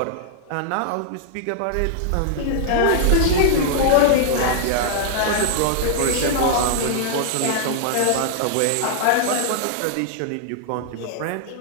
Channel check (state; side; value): different; both; correlation -0.01